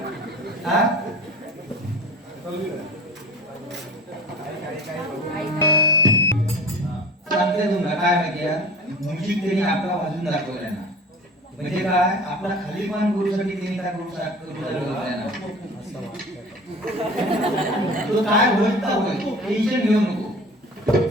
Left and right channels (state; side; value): normal; both; correlation 0.40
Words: हा. सांगते तुम्हाला काय माहिती आहे, म्युझिक त्यांनी आपला वाजून दाखवलाय ना. म्हणजे काय आपला खालीपण गुरुसाठी त्यांनी काय करू शकतो. तो काय होईल तर होईल, टेन्शन घेऊ नको.